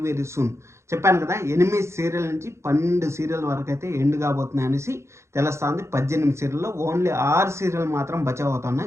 సూన్. చెప్పాను కదా! 8 సీరియల్ నుంచి 12 సీరియల్ వరకైతే ఎండ్ కాబోతున్నాయి అనేసి తెలుస్తుంది. 18 సీరియల్‌లో ఓన్లీ 6 సీరియల్ మాత్రం బచావ్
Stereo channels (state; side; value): late; left; 0.13 ms